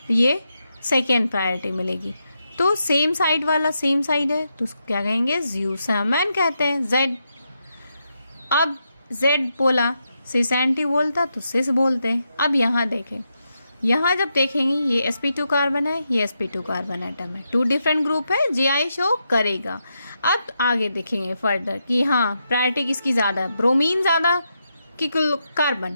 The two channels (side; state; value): both; inverted; correlation -0.84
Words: ये सेकेंड प्रायोरिटी मिलेगी। तो सेम साइड वाला सेम साइड है तो उसको क्या कहेंगे, ज्यूसामैन कहते हैं, जेड। अब जेड बोला, सिस एंटी बोलता तो सिस बोलते हैं। अब यहाँ देखें, यहाँ जब देखेंगे ये sp2 कार्बन है, ये sp2 कार्बन एटम है, टू डिफरेंट ग्रुप है, जीआई शो करेगा। अब आगे देखेंगे फर्दर कि हाँ प्रायोरिटी किसकी ज़्यादा है, ब्रोमीन ज़्यादा कि